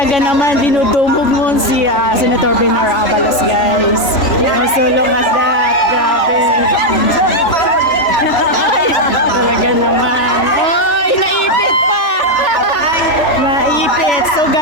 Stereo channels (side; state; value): right; late; 3.4 ms